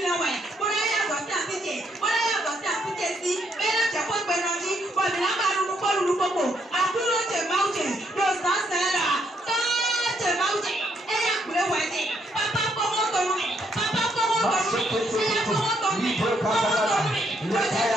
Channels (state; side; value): normal; both; correlation 0.73